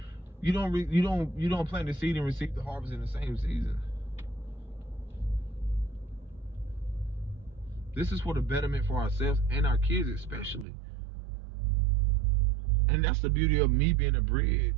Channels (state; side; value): drops out; left; at 10.7 s